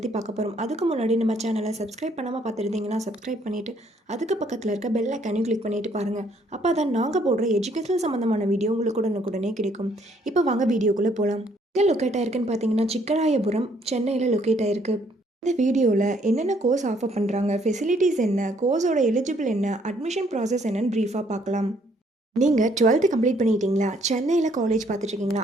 பார்க்க போகிறோம். அதுக்கு முன்னாடி நம்ம சேனலை சப்ஸ்கிரைப் பண்ணாமல் பார்த்துருந்தீங்கன்னா சப்ஸ்கிரைப் பண்ணிவிட்டு அதுக்கு பக்கத்தில் இருக்க பெல் ஐக்கானையும் கிளிக் பண்ணிட்டு பாருங்கள். அப்போ தான் நாங்கள் போடுற எஜுகேஷனல் சம்மந்தமான வீடியோ உங்களுக்கு உடனுக்குடனே கிடைக்கும். இப்போ வாங்க வீடியோக்குள்ளே போகலாம். எங்கே லொக்கேட் ஆயிருக்குன்னு பார்த்தீங்கன்னா சிக்கராயபுரம், சென்னையில் லொக்கேட் ஆயிருக்கு. இந்த வீடியோவில் என்னென்ன கோர்ஸ் ஆஃபர் பண்ணுறாங்க, ஃபெசிலிட்டிஸ் என்ன, கோர்ஸோட எலிஜிபிள் என்ன, அட்மிஷன் ப்ராசஸ் என்னன்னு ப்ரீஃபாக பார்க்கலாம். நீங்கள் 12th கம்ப்ளீட் பண்ணிட்டீங்களா, சென்னையில் காலேஜ் பார்த்துட்ருக்கீங்களா,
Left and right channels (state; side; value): normal; both; correlation 0.66